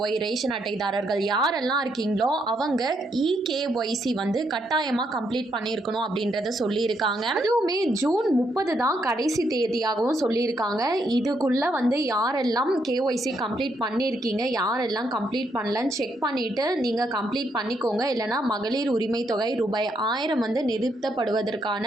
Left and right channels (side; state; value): both; normal; correlation 0.76